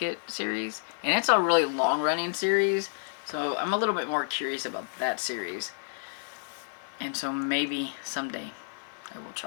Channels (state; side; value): silent; right; digital silence